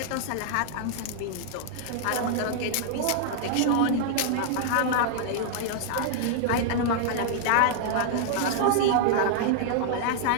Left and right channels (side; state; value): both; different; correlation -0.01